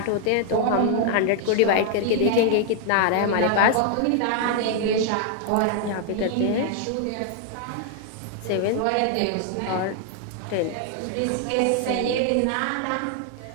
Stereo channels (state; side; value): different; both; correlation 0.00